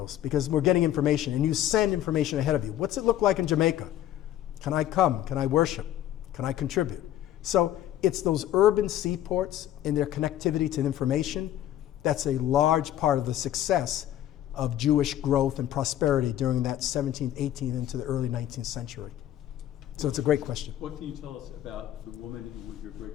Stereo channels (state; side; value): quieter; right; 12.3 dB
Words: because we're getting information, and you send information ahead of you. What's it look like in Jamaica? Can I come? Can I worship? Can I contribute? So it's those urban seaports and their connectivity to information that's a large part of the success of Jewish growth and prosperity during that 17th, 18th, into the early 19th century. So it's a great question. What can you tell us about the woman who was your